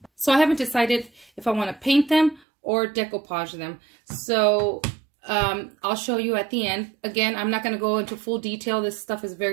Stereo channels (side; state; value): left; drops out; at 2.4 s